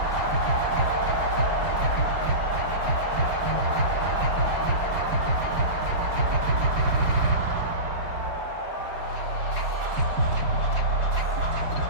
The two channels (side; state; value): left; late; 4.9 ms